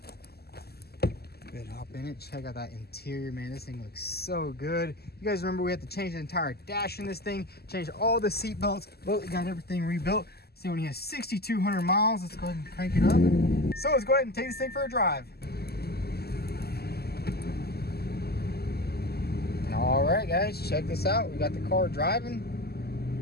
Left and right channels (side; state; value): right; late; 0.46 ms